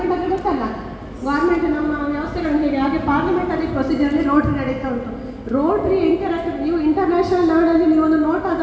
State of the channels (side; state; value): both; identical; correlation 1.00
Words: ಅಂದರೆ ಗೊತ್ತಲ್ಲ, ಗೌರ್ಮೆಂಟ್ ನಮ್ಮ ವ್ಯವಸ್ಥೆಗಳು ಹೇಗೆ ಹಾಗೆ ಪಾರ್ಲಿಮೆಂಟರಿ ಪ್ರೊಸೀಜರಲ್ಲಿ ರೋಟ್ರಿ ನಡೀತಾ ಉಂಟು. ರೋಟ್ರಿ ಇಂಟರಾಕ್ಟಿವ್, ನೀವು ಇಂಟರ್ನ್ಯಾಷನಲ್ ಲೆವೆಲಲ್ಲಿ ನೀವು ಒಂದು ನೋಟ್